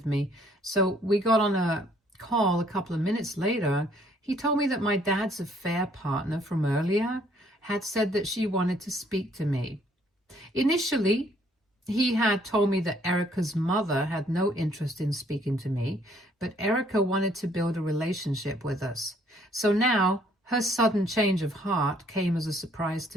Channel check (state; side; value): normal; both; correlation 0.64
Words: me. So we got on a call a couple of minutes later. He told me that my dad's affair partner from earlier had said that she wanted to speak to me. Initially, he had told me that Erica's mother had no interest in speaking to me, but Erica wanted to build a relationship with us. So now, her sudden change of heart came as a surprise